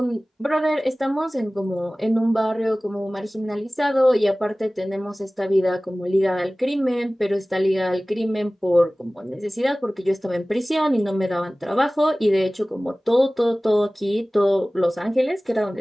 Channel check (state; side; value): normal; both; correlation 0.98